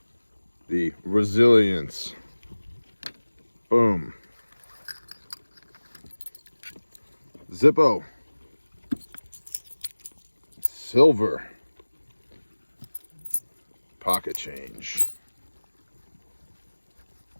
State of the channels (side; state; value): both; inverted; correlation -1.00